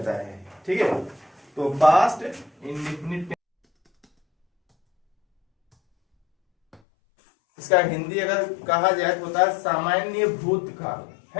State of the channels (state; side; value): drops out; right; at 6.8 s